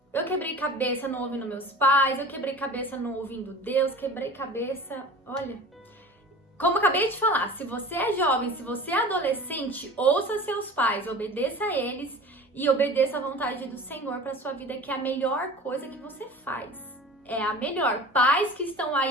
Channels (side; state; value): both; normal; correlation 0.38